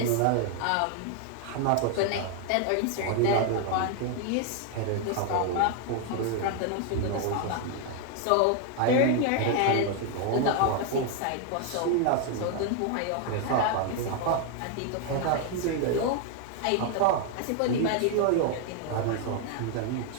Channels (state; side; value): different; both; correlation 0.00